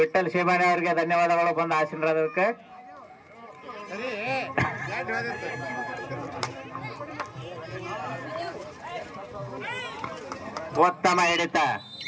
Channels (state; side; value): identical; both; correlation 1.00